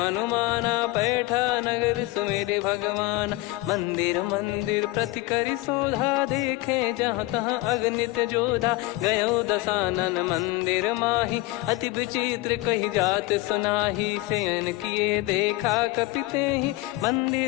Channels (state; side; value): quieter; right; 19.4 dB